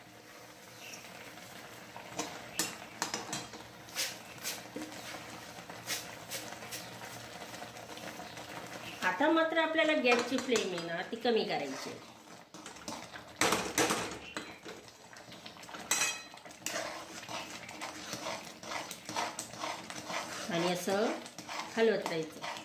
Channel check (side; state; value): both; identical; correlation 1.00